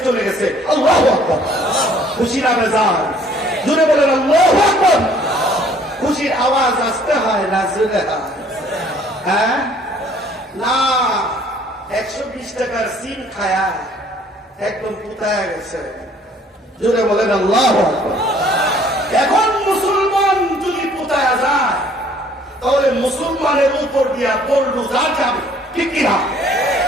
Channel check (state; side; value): normal; both; correlation 0.58